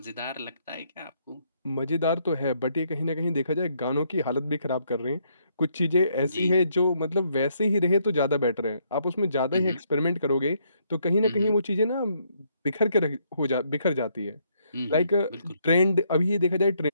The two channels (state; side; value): inverted; both; correlation -0.72